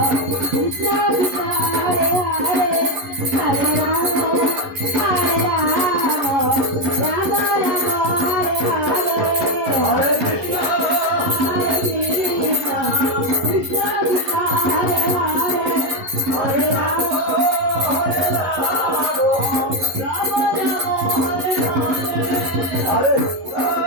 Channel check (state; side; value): late; left; 11 ms